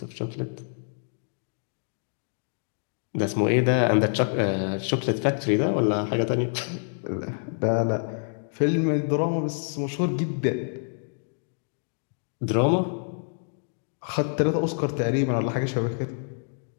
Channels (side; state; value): right; silent; digital silence